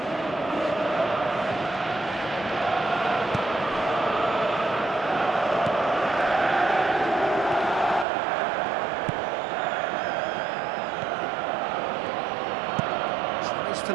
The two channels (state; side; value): drops out; left; at 8.1 s